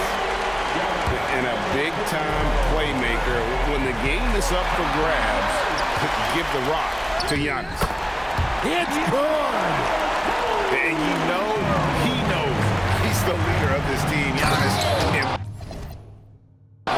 And a big-time playmaker. When the game is up for grabs, give the rock to Giannis. It's good! And you know, he knows he's the leader of this team. Giannis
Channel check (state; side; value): identical; both; correlation 1.00